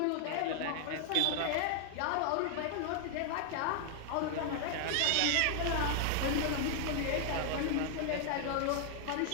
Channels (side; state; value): both; different; correlation 0.00